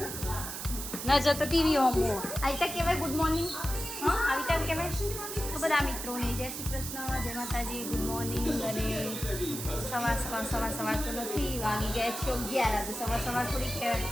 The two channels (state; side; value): noise; right; hiss, 6 dB below the sound